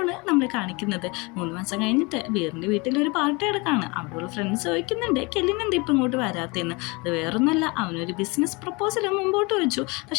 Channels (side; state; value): right; quieter; 27.0 dB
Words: നമ്മൾ കാണിക്കുന്നത്. 3 മാസം കഴിഞ്ഞിട്ട് വീറിൻ്റെ വീട്ടിൽ ഒരു പാർട്ടി എടുക്കാണ്. അവിടെയുള്ള ഫ്രണ്ട്സ് ചോദിക്കുന്നുണ്ട് കെലിന് എന്താ ഇപ്പം ഇങ്ങോട്ട് വരാത്തതെന്ന്. അത് വേറൊന്നുമല്ല, അവനൊരു ബിസിനസ് പ്രപ്പോസൽ മുമ്പോട്ട് വെച്ചു,